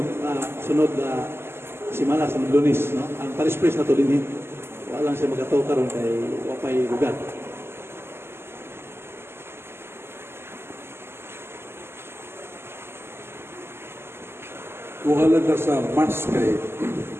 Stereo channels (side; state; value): left; late; 0.12 ms